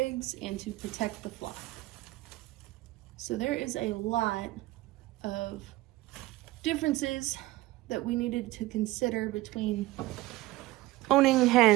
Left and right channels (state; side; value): quieter; left; 18.4 dB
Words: and to protect the flock. So there is a lot of differences that we needed to consider between owning